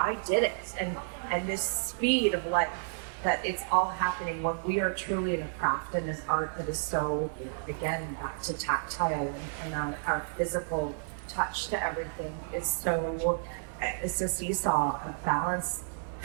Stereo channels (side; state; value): left; silent; 57 dB below the other